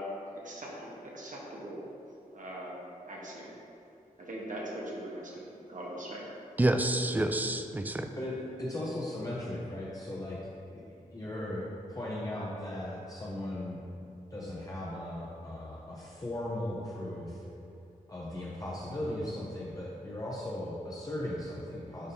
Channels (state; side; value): normal; both; correlation 0.73